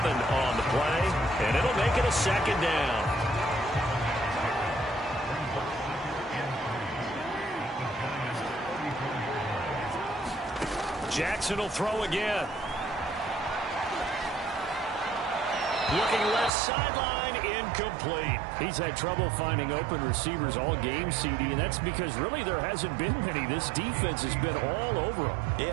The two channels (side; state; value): left; drops out; at 16.5 s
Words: on the play, and it'll make it a second down. Jackson will throw again. Looking left sideline, incomplete. He's had trouble finding open receivers all game, CD, and that's because really there hasn't been many. This defense has been all over them.